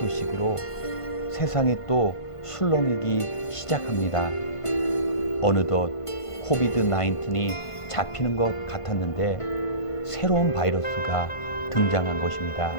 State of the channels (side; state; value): right; late; 1.5 ms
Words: 세상이 또 술렁이기 시작합니다. 어느덧 코비드-19이 잡히는 것 같았는데 새로운 바이러스가 등장한 것입니다.